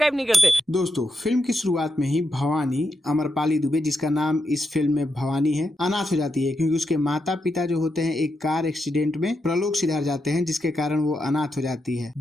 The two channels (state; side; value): normal; both; correlation 0.84